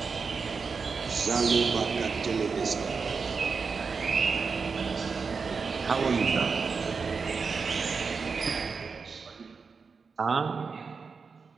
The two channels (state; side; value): quieter; left; 5.1 dB